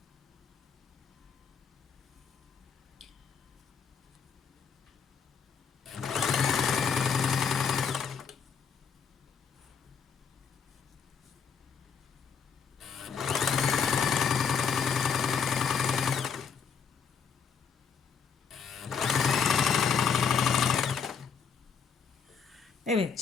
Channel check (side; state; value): right; quieter; 6.4 dB